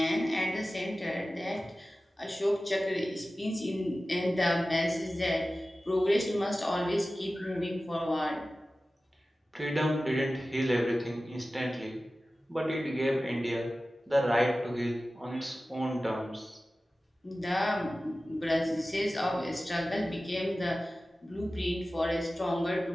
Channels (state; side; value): normal; both; correlation 0.96